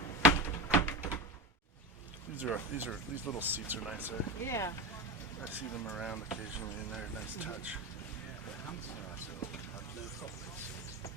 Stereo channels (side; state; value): both; normal; correlation 0.22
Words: These little seats are nice. yeah. I see them around occasionally, and they're a nice touch. The Hansard so have no cockpit seats.